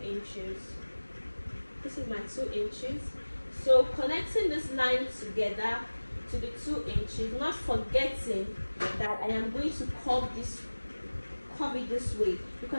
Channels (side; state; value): both; inverted; correlation -1.00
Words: inches. This is my 2 inches. So connecting this line together to the 2 inches, not forgetting that I am going to curve it this way,